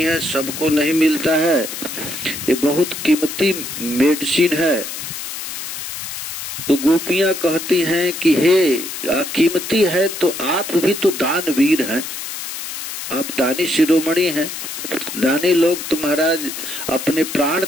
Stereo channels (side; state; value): left; noise; hiss, 7 dB below the sound